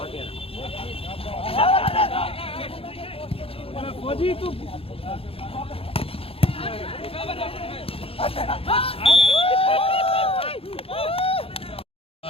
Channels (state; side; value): late; right; 0.27 ms